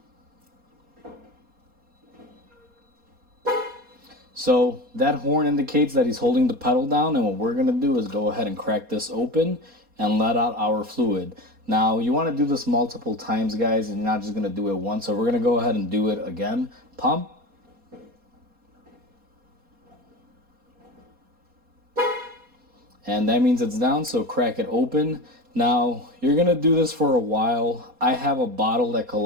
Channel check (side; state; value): left; late; 4.2 ms